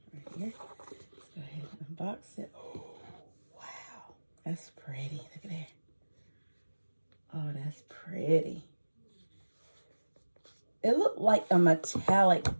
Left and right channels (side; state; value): both; inverted; correlation -1.00